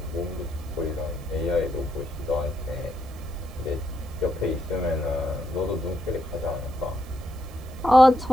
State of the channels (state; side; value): noise; right; hiss, 25 dB below the sound